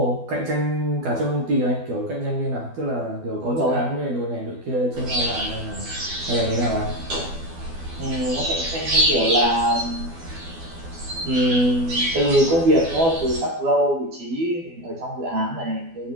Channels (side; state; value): left; late; 12 ms